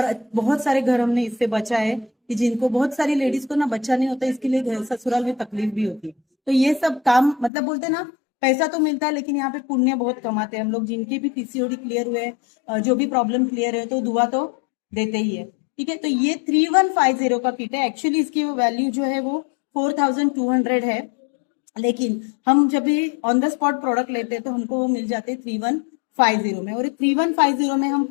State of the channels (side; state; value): right; drops out; at 7.5 s